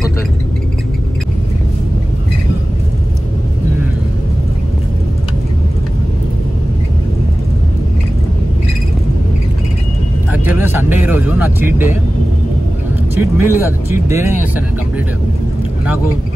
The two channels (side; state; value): both; normal; correlation 0.96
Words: యాక్చువల్గా సండే ఈరోజు నా చీట్ మీల్ కాదు, చీట్ డేనే చేస్తాను నేను కంప్లీట్గా. నాకు